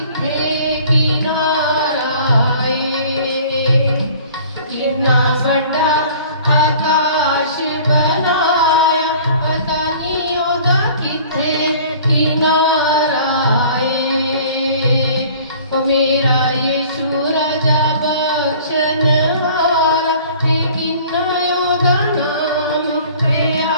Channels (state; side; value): inverted; both; correlation -0.49